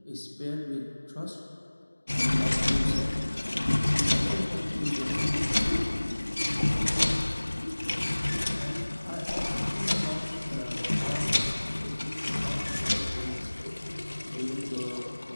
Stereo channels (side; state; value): both; inverted; correlation -1.00